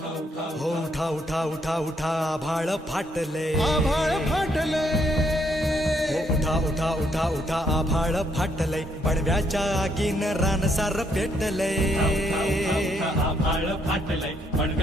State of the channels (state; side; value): normal; both; correlation 0.72